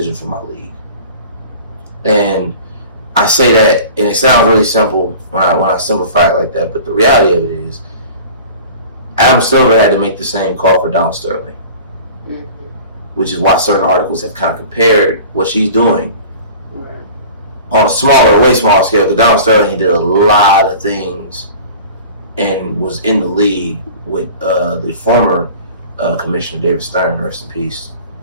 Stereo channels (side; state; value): both; inverted; correlation -0.42